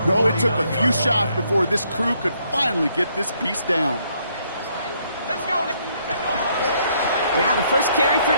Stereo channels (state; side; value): inverted; both; correlation -0.70